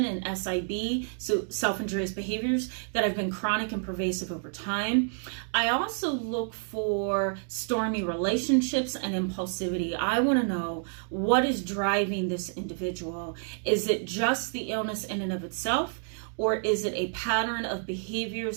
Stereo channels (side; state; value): left; silent; 59 dB below the other